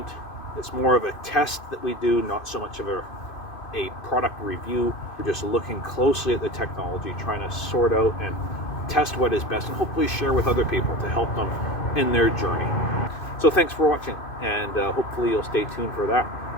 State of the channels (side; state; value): right; late; 2.5 ms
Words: It's more of a test that we do, not so much of a product review. We're just looking closely at the technology, trying to sort out and test what is best, and hopefully share with other people to help them in their journey. So thanks for watching, and hopefully you'll stay tuned for that